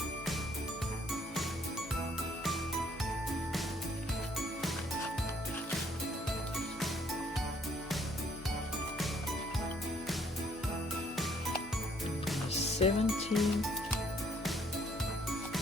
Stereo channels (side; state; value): both; normal; correlation 0.64